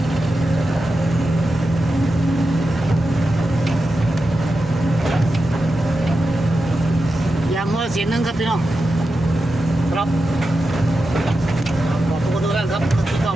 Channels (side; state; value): both; normal; correlation 0.90